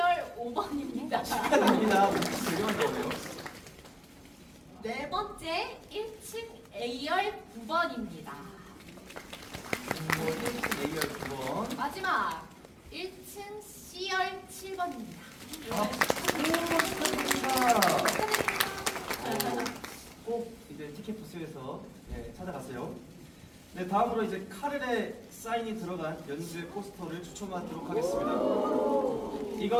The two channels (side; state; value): both; identical; correlation 1.00